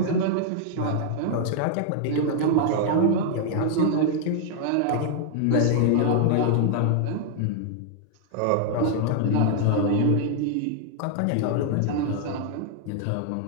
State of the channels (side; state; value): both; different; correlation 0.00